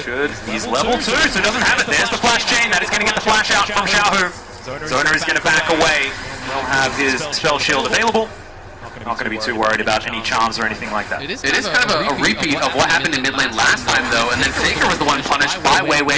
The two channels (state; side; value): identical; both; correlation 1.00